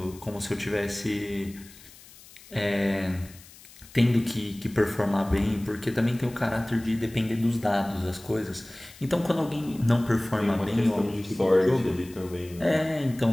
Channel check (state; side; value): noise; left; hiss, 21 dB below the sound